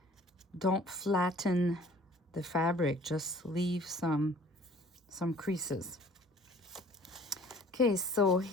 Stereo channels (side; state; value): both; normal; correlation 0.52